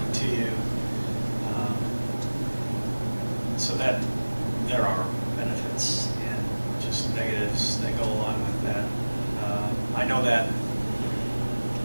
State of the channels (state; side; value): inverted; both; correlation -1.00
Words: to you. So that there are benefits and just negatives that go along with that. I know that